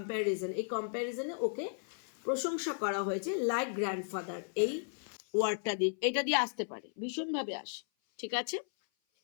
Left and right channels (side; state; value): right; silent; 54 dB below the other